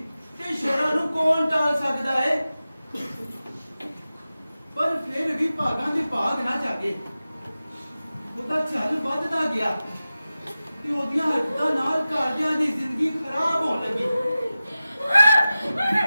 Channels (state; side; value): inverted; both; correlation -0.95